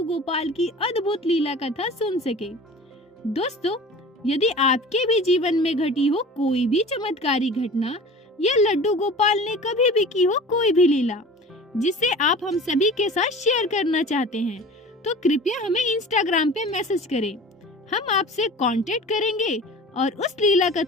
गोपाल की अद्भुत लीला कथा सुन सके। दोस्तों, यदि आपके भी जीवन में घटी हो कोई भी चमत्कारी घटना या लड्डू गोपाल ने कभी भी की हो कोई भी लीला जिसे आप हम सभी के साथ शेयर करना चाहते हैं, तो कृपया हमें इंस्टाग्राम पे मैसेज करें। हम आपसे कांटेक्ट करेंगे और उस लीला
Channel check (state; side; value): normal; both; correlation 0.40